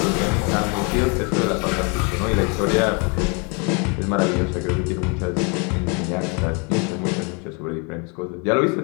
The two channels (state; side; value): quieter; right; 33.5 dB